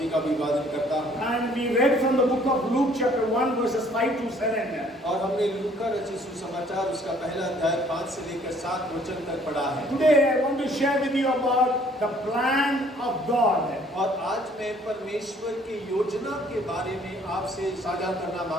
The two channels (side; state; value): both; normal; correlation 0.59